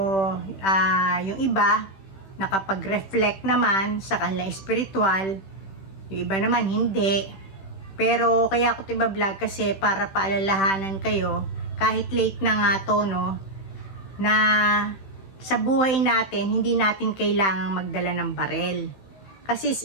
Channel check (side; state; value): right; late; 16 ms